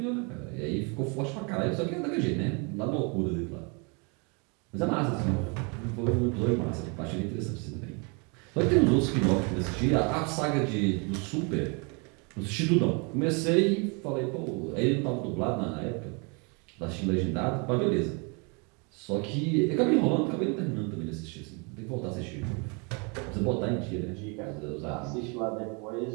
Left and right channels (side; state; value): left; quieter; 33.0 dB